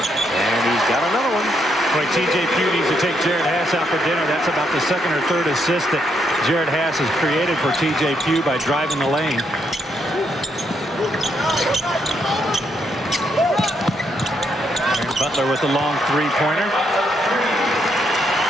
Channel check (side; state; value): both; normal; correlation 0.75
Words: got another one. Boy, T.J. Pugh needs to take Jared Hass out for dinner. That's about the second or third assist that Jared Hass has created for T.J. Pugh by driving the lane. Butler with the long three-pointer.